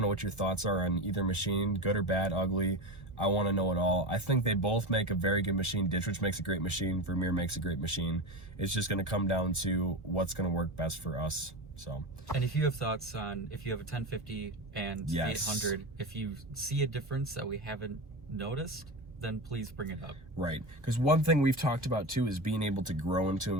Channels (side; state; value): left; late; 1.2 ms